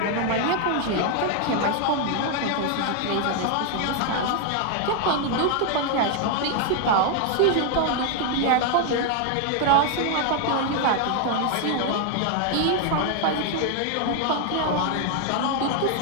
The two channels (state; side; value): different; both; correlation 0.01